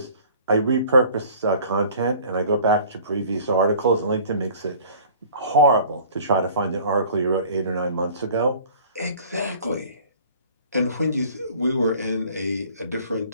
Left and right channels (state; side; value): inverted; both; correlation -0.49